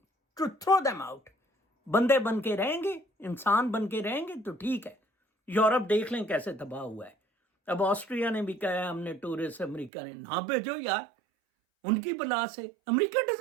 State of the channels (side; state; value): left; drops out; at 9.9 s